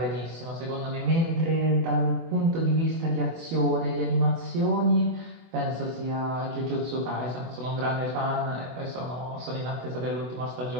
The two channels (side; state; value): left; late; 24 ms